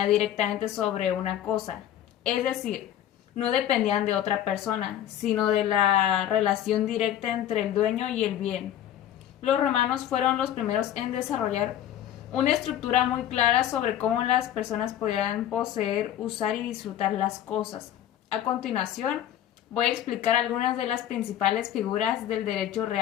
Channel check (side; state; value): right; quieter; 11.2 dB